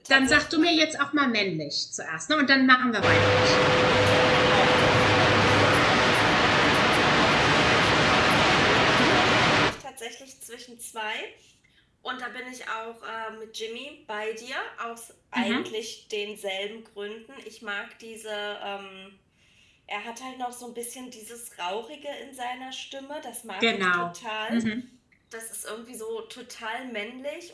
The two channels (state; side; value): identical; both; correlation 1.00